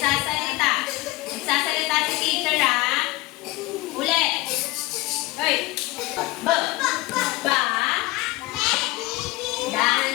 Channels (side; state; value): right; quieter; 20.4 dB